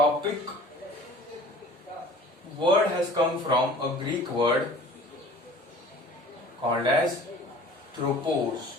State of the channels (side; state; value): both; normal; correlation 0.46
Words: word has come from a Greek word called as